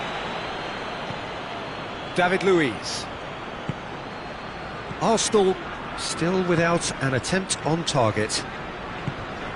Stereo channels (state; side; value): identical; both; correlation 1.00